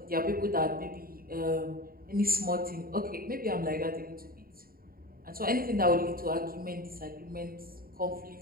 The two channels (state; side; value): late; left; 0.43 ms